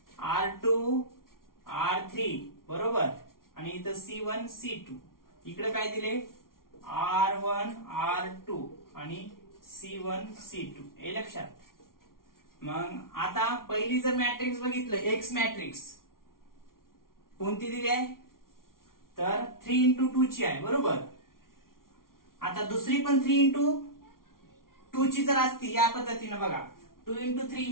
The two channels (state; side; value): late; right; 0.92 ms